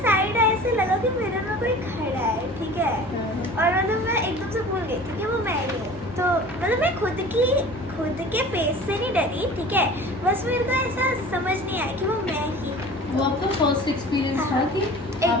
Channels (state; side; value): normal; both; correlation 0.41